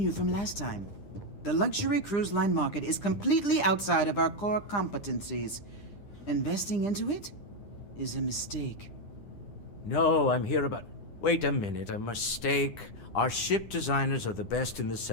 from last time? The luxury cruise line market is completely outside of our core competencies. Investing into it is a mistake. No, I'm here about... Wait a minute, a mistake. Our ship designers are the best in the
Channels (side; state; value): right; late; 9.9 ms